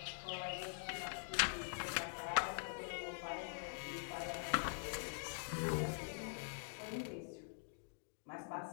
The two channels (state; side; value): silent; right; digital silence